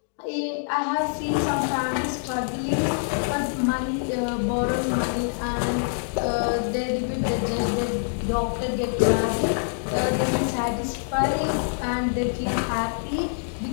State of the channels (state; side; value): silent; right; digital silence